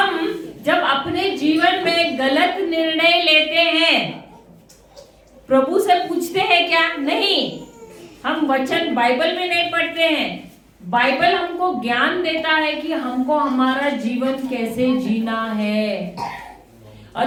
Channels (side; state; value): both; identical; correlation 1.00